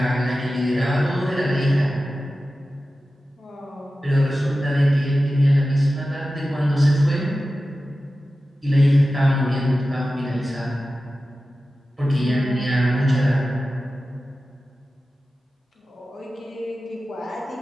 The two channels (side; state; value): both; normal; correlation 0.94